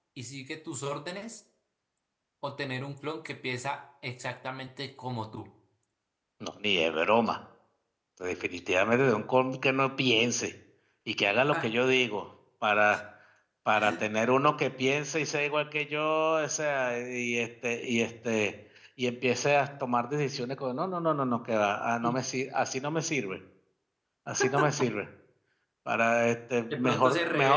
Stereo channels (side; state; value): both; identical; correlation 1.00